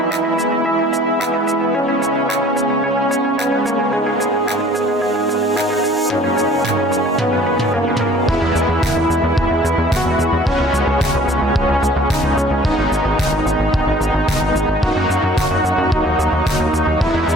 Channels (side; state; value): both; normal; correlation 0.53